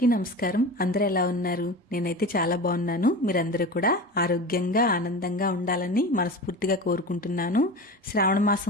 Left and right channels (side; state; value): both; normal; correlation 0.30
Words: నమస్కారం. అందరూ ఎలా ఉన్నారు? నేనైతే చాలా బాగున్నాను. మీరందరూ కూడా ఆరోగ్యంగా ఆనందంగా ఉండాలని మనస్ఫూర్తిగా కోరుకుంటున్నాను. శ్రావణ